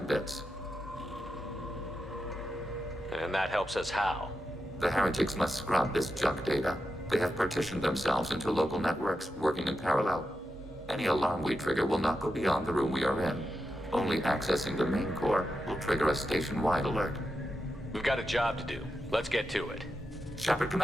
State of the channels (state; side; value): normal; both; correlation 0.87